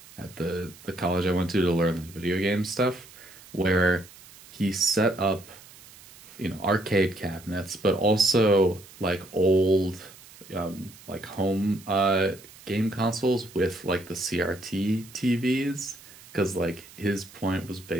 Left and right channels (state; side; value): noise; right; hiss, 21 dB below the sound